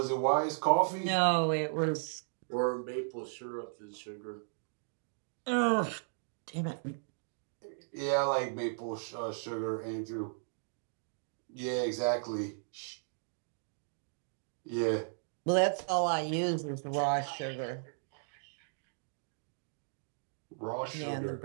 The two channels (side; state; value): left; silent; digital silence